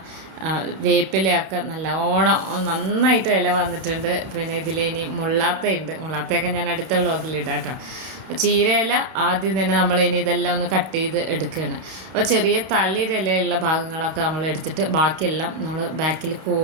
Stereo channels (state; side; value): late; left; 32 ms